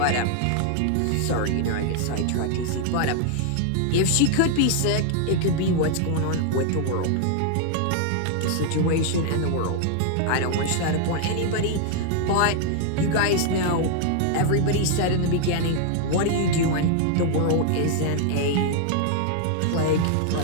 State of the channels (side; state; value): both; different; correlation 0.00